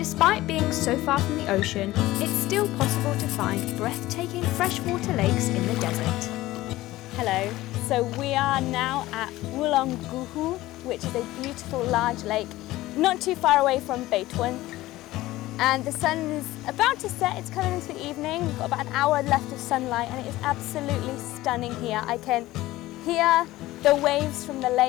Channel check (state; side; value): quieter; right; 17.1 dB